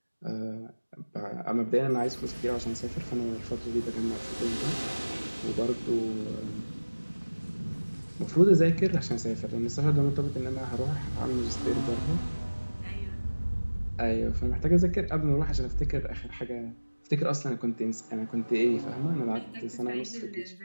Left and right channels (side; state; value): both; inverted; correlation -1.00